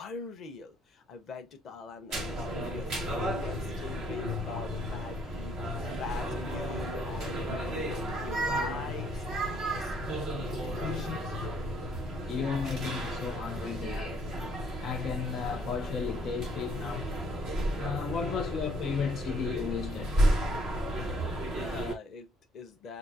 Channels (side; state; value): both; normal; correlation 0.66